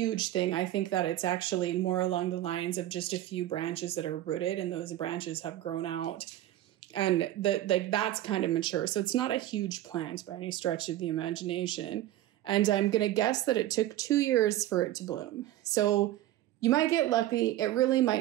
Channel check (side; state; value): left; quieter; 14.1 dB